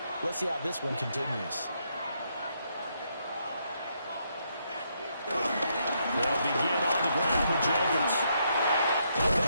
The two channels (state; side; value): inverted; both; correlation -0.76